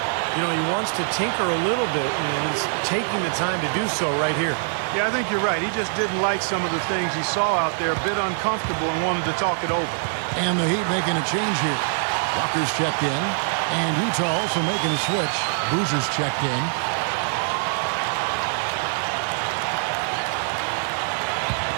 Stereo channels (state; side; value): silent; left; digital silence